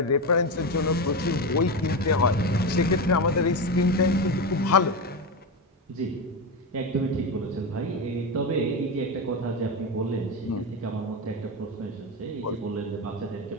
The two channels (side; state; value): both; normal; correlation 0.16